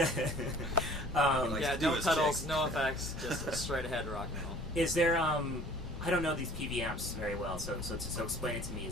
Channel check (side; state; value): left; noise; rumble, 9 dB below the sound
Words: Like Yeah, to do no his pedals, chicks. no effects, just a straight ahead rock and roll. Is there I don't know these PV amps very well, so explain it to me.